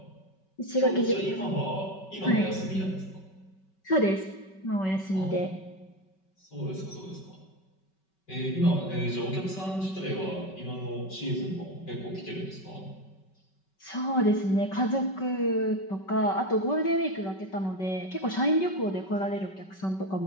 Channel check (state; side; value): late; right; 5.3 ms